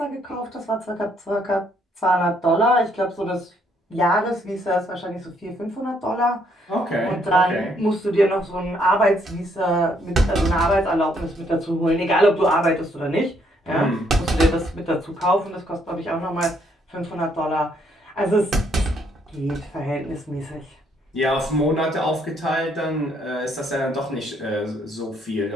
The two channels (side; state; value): both; normal; correlation 0.70